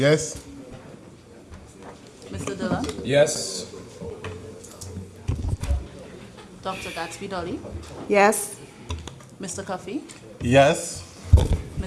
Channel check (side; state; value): both; identical; correlation 1.00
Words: Mr. Dillon? Yes. Dr. Gatsby Dolly? Yes. Mr. Cuffey? Yes.